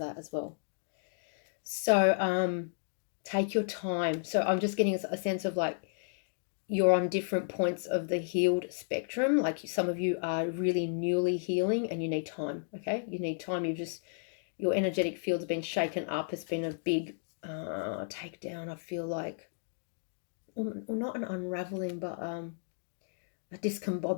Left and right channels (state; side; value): silent; right; digital silence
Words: as well. So take your time. So I'm just getting a sense of like you're on different points of the healed spectrum. Like some of you are really newly healing and you need time, okay? You need time. Your energetic field's been shaken up. It's been a big takedown, I feel like. Well, not an unraveling, but a